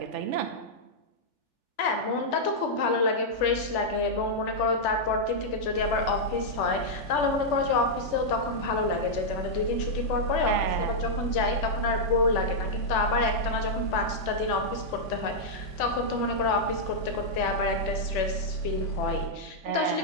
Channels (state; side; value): late; right; 3.4 ms